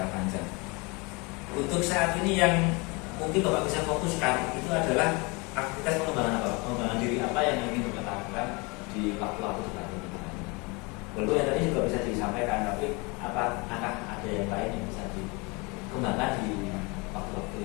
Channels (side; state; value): right; quieter; 28.1 dB